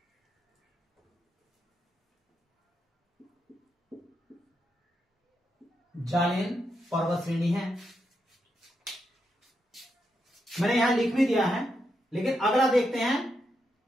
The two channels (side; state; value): both; normal; correlation 0.83